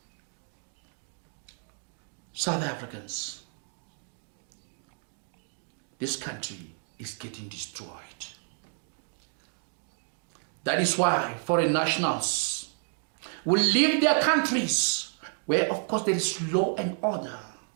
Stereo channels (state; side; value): silent; left; 58 dB below the other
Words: South Africans, this country is getting destroyed. That is why foreign nationals will leave their countries where of course there is law and order